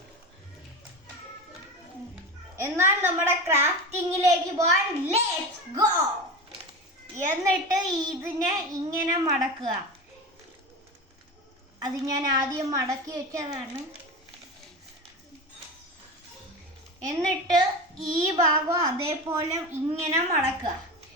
എന്നാൽ നമ്മുടെ ക്രാഫ്റ്റിങ്ങിലേക്ക് പോകാൻ ലെറ്റ്സ് ഗോ. എന്നിട്ട് ഇതിനെ ഇങ്ങനെ മടക്കുക. അത് ഞാൻ ആദ്യം മടക്കി വെച്ചതാണ്. എന്നിട്ട് ഈ ഭാഗം അതേപോലെ ഇങ്ങനെ മടക്കുക.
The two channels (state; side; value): normal; both; correlation 0.26